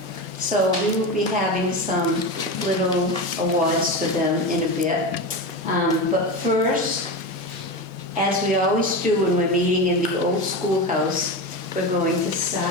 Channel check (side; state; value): both; normal; correlation 0.21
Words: So we will be having some little awards for them in a bit. But first, as we always do when we're meeting in the old schoolhouse, we're going to